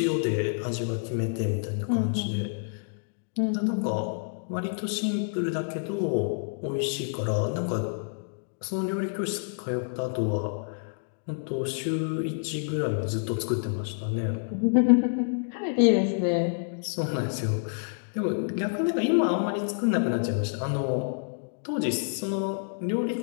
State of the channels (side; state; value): right; silent; digital silence